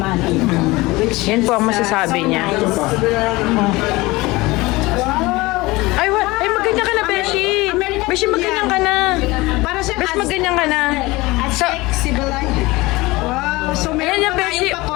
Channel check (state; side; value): quieter; right; 21.4 dB